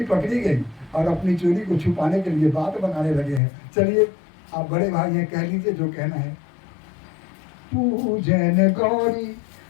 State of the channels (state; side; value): drops out; right; at 3.4 s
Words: पकड़ी गई और अपनी चोरी को छुपाने के लिए बात बनाने लगे हैं। चलिए आप बड़े भाई हैं, कह लीजिए जो कहना है। पूजन गौरी